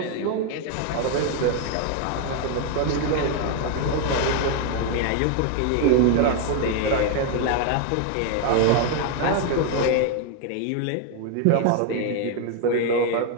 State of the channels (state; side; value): different; both; correlation 0.00